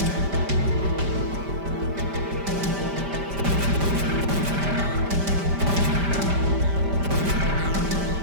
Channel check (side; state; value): left; late; 5.1 ms